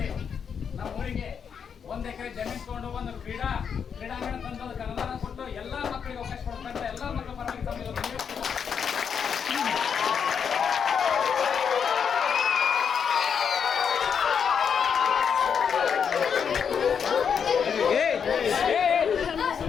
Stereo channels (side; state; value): right; quieter; 7.0 dB